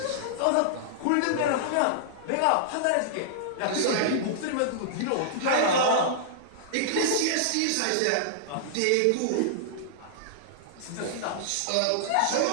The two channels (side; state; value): both; different; correlation -0.01